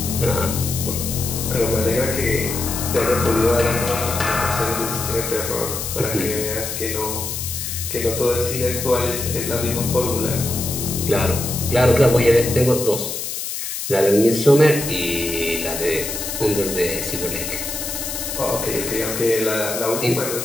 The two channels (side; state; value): left; noise; hiss, 5 dB below the sound